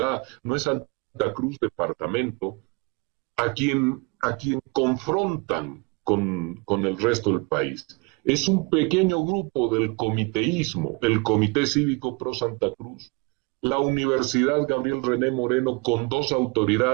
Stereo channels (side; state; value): left; quieter; 29.7 dB